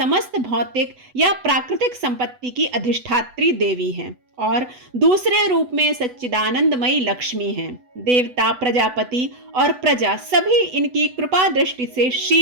भौतिक या प्राकृतिक संपत्ति की अधिष्ठात्री देवी हैं और दूसरे रूप में सच्चिदानंदमयी लक्ष्मी हैं। देवता, प्रजापति और प्रजा सभी इनकी कृपा दृष्टि से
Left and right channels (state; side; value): late; left; 8.0 ms